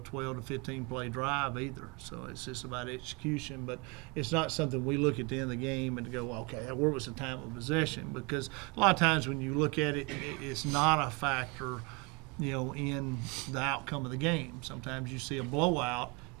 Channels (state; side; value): quieter; left; 29.0 dB